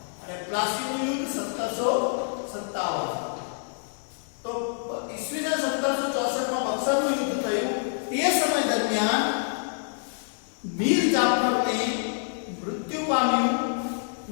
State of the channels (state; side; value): silent; right; digital silence